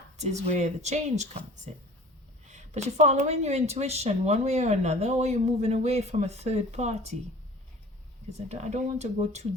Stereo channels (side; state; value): both; normal; correlation 0.44